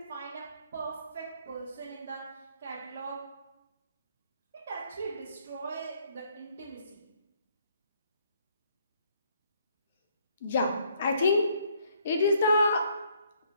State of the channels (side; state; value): both; inverted; correlation -0.67